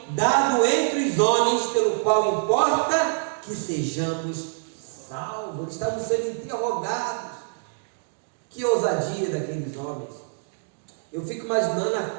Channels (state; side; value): silent; left; digital silence